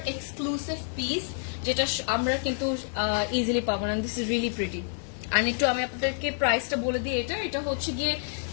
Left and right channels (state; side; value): silent; right; digital silence